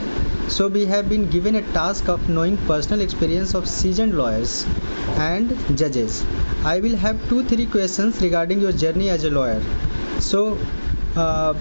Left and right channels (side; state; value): both; inverted; correlation -1.00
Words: So, we have been given a task of knowing personal experience of seasoned lawyers and judges. I will have 2-3 questions regarding your journey as a lawyer. So,